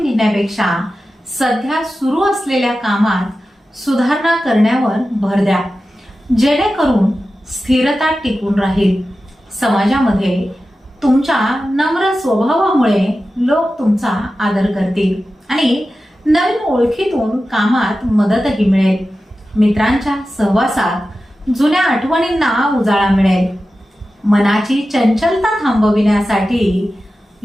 घेण्यापेक्षा सध्या सुरू असलेल्या कामात सुधारणा करण्यावर भर द्या, जेणेकरून स्थिरता टिकून राहील. समाजामध्ये तुमच्या नम्र स्वभावामुळे लोक तुमचा आदर करतील आणि नवीन ओळखीतून कामात मदतही मिळेल. मित्रांच्या सहवासात जुन्या आठवणींना उजाळा मिळेल. मनाची चंचलता थांबविण्यासाठी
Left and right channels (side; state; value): both; normal; correlation 0.93